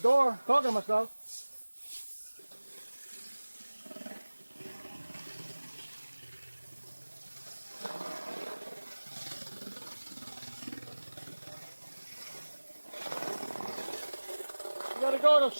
talking to myself. You gotta go at a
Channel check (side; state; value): both; inverted; correlation -1.00